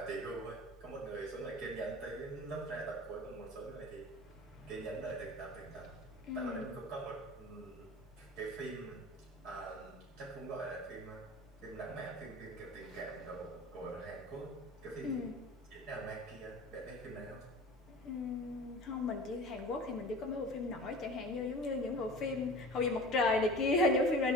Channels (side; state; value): both; normal; correlation 0.38